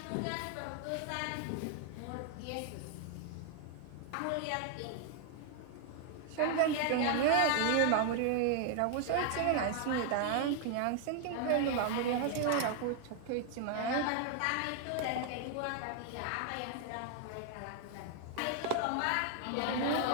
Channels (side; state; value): both; different; correlation 0.00